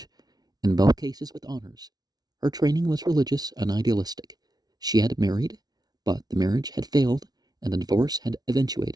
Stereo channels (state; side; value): late; left; 0.19 ms